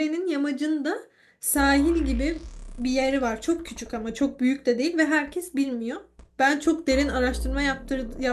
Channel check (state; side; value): identical; both; correlation 1.00